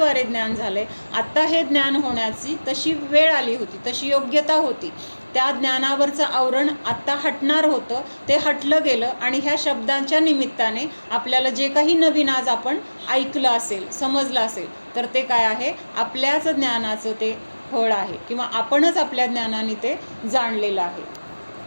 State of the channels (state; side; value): inverted; both; correlation -1.00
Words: ज्ञान झालं आहे. आत्ता हे ज्ञान होण्याची तशी वेळ आली होती, तशी योग्यता होती. त्या ज्ञानावरचं आवरण आत्ता हटणार होतं, ते हटलं गेलं आणि ह्या शब्दांच्या निमित्ताने आपल्याला जे काही नवीन आज आपण ऐकलं असेल, समजलं असेल, तर ते काय आहे? आपल्याच ज्ञानाचं ते फळ आहे किंवा आपणच आपल्या ज्ञानाने ते जाणलेलं आहे.